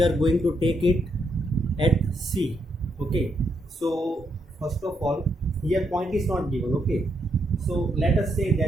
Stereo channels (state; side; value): normal; both; correlation 0.78